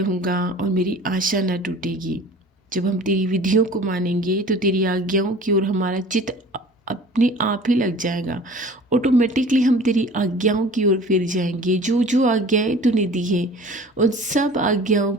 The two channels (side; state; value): both; normal; correlation 0.44